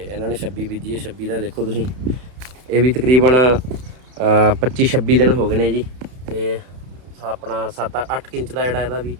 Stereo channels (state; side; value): late; left; 31 ms